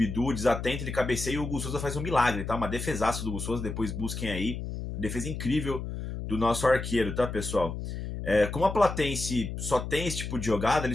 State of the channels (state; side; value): noise; left; hum, 6 dB below the sound